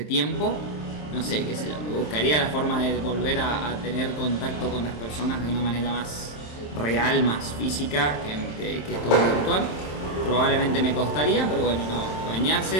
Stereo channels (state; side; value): late; right; 27 ms